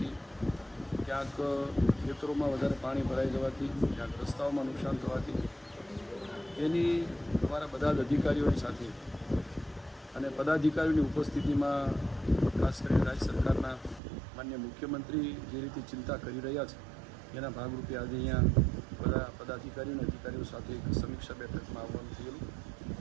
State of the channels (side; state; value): left; drops out; at 14.0 s